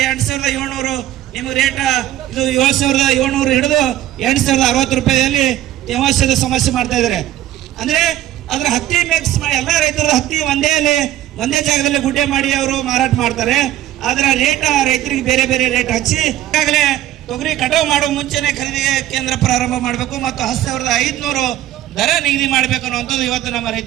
ನಿಮ್ಗೆ ರೇಟ್ ಇದು 7700 ಹಿಡಿದು 8060 ರೂಪಾಯಿಯಲ್ಲಿ ತೇವಾಂಶದ ಸಮಸ್ಯೆ ಮಾಡ್ತಾ ಇದ್ದಾರೆ. ಅಂದ್ರೆ ಅದ್ರ ಹತ್ತಿ ಮಿಕ್ಸ್ ಮಾಡಿ ಎಲ್ಲ ರೈತರು ಹತ್ತಿ ಒಂದೇ ಜಾಗದಲ್ಲಿ ಗುಡ್ಡೆ ಮಾಡಿ ಅವರು ಮಾರಾಟ ಮಾಡ್ತಾರೆ. ಆದ್ರೆ ರೇಟ್ ರೈತರಿಗೆ ಬೇರೆ ಬೇರೆ ರೇಟ್ ಹಚ್ಚಿ ಈಗಾಗಲೇ ತೊಗರಿ ಕಟಾವು ಮಾಡುವ ಮುಂಚೆನೆ ಖರೀದಿ ಕೇಂದ್ರ ಪ್ರಾರಂಭ ಮಾಡಬೇಕು ಮತ್ತು 10,500 ದರ ನಿಗದಿ ಮಾಡಬೇಕು ಅನ್ನುವಂಥದ್ದು ಇವತ್ತು ನಮ್ಮ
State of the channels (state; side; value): quieter; left; 13.3 dB